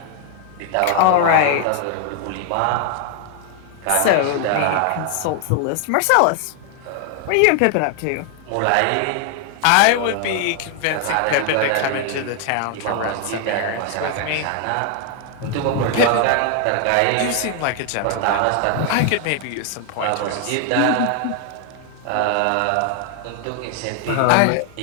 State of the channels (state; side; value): different; both; correlation 0.00